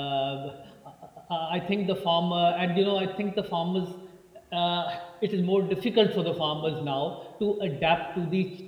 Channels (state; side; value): identical; both; correlation 1.00